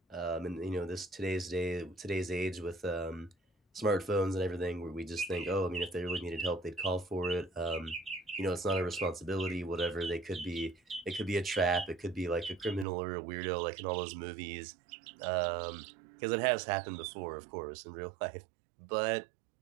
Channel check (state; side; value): drops out; left; at 12.9 s